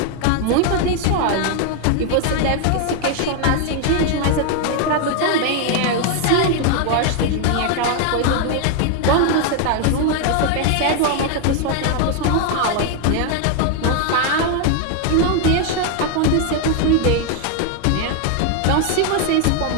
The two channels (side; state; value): both; different; correlation 0.00